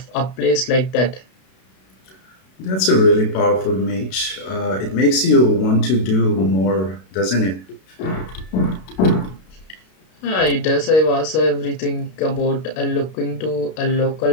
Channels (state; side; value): late; right; 32 ms